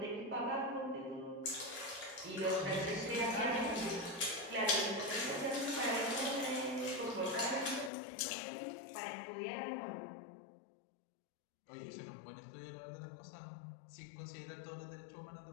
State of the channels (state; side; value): drops out; right; at 7.9 s